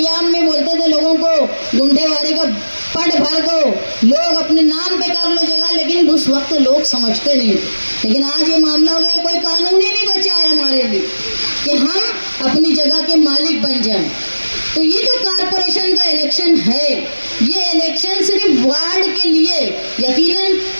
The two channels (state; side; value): inverted; both; correlation -1.00